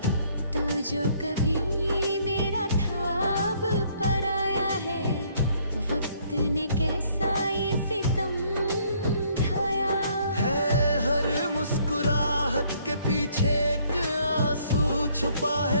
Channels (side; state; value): both; inverted; correlation -0.65